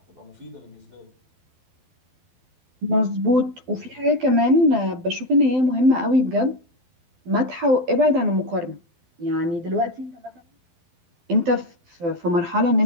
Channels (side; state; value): left; late; 12 ms